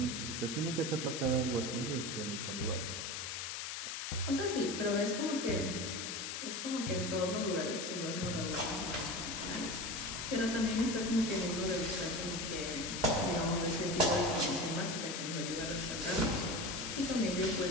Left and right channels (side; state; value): left; noise; hiss, 4 dB below the sound